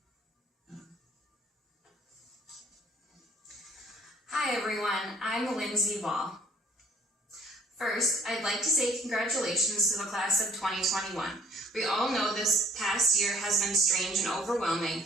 Hi everyone, I'm Lindsay Wall. First, I'd like to say congratulations to the Class of 2021. We all know this past year has been strange and overwhelming,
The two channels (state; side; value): normal; both; correlation 0.59